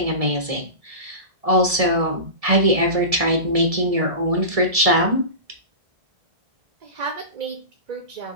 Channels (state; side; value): late; left; 1.7 ms